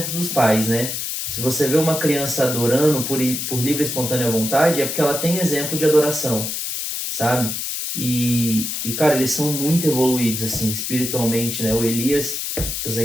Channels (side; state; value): left; noise; hiss, 3 dB below the sound